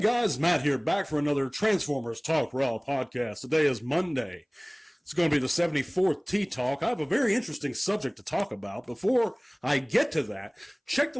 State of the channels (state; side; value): identical; both; correlation 1.00